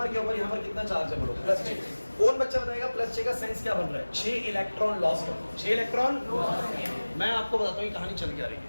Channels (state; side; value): inverted; both; correlation -1.00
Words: के ऊपर यहाँ पर कितना चार्ज है बोलो? +6। कौन बच्चा बताएगा +6 का सेंस क्या बन रहा है? 6 इलेक्ट्रॉन लॉस कर 6 इलेक्ट्रॉन। मैं आपको बताता हूँ ये कहानी चल के आ रही है,